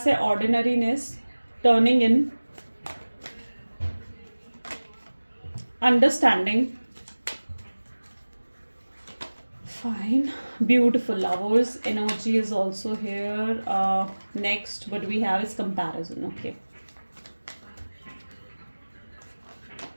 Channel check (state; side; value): inverted; both; correlation -1.00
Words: है ordinariness, turning in, understanding, fine, beautiful, lovers energy is also here. Next what we have is comparison. Okay,